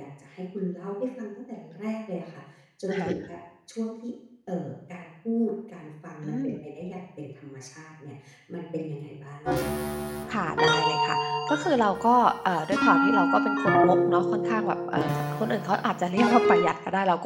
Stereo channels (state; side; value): identical; both; correlation 1.00